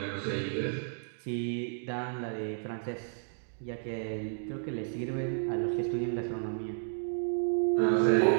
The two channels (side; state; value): left; silent; digital silence